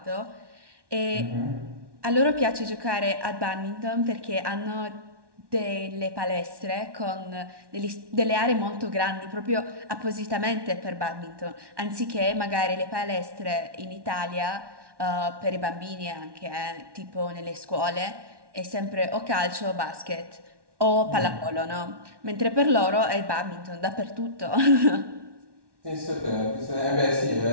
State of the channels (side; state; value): left; late; 1.1 ms